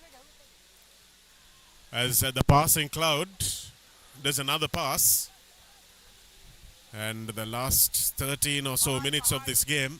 As the passing cloud does another pass, and the last 13 or so minutes of this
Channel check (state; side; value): identical; both; correlation 1.00